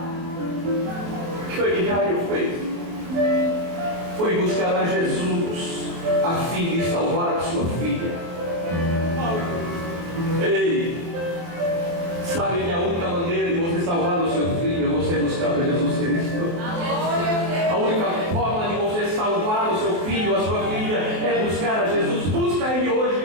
O que foi que Jairo fez? Foi buscar a Jesus a fim de salvar a sua filha. Ei, sabe que a única maneira de você salvar o seu filho é você buscar a Jesus Cristo. A única forma de você salvar o seu filho, a sua filha, é buscar a Jesus. Busca Ele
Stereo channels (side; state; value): left; late; 24 ms